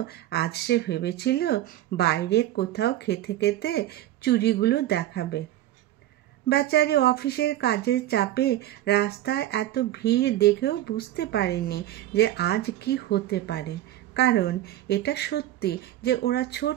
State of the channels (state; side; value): quieter; left; 13.8 dB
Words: আজ সে ভেবেছিল বাইরে কোথাও খেতে খেতে চুড়িগুলো দেখাবে। বেচারি অফিসের কাজের চাপে রাস্তায় এত ভিড় দেখেও বুঝতে পারেনি যে আজ কি হতে পারে। কারণ এটা সত্যি যে ওরা